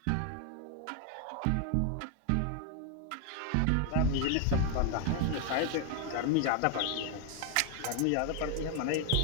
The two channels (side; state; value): both; different; correlation 0.01